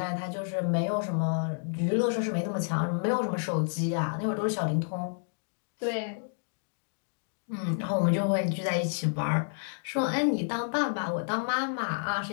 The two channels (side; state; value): right; silent; digital silence